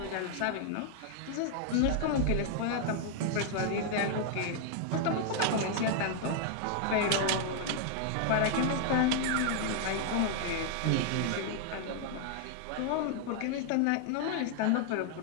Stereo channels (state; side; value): different; both; correlation 0.00